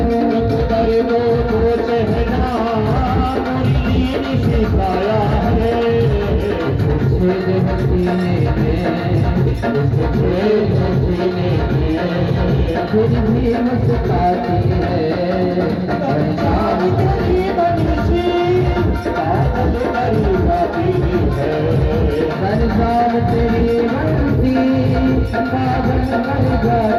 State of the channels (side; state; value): both; identical; correlation 1.00